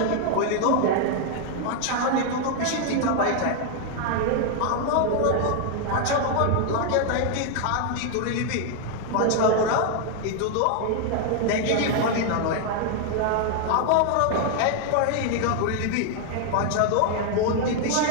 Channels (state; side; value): different; both; correlation 0.00